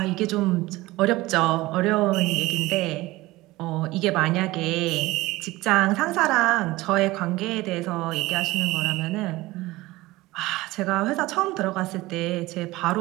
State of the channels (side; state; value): left; quieter; 19.3 dB